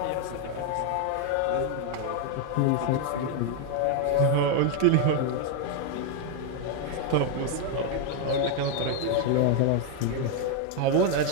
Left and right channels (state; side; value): different; both; correlation 0.01